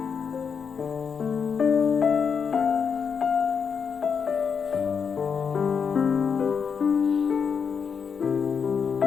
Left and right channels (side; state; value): right; quieter; 6.4 dB